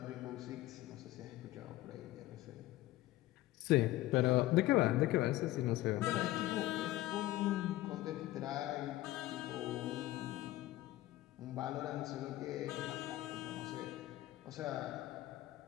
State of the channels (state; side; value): quieter; right; 16.3 dB